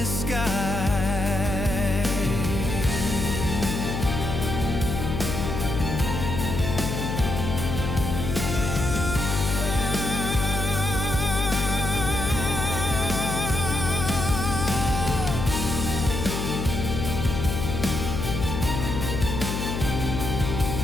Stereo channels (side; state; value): left; noise; hum, 3 dB below the sound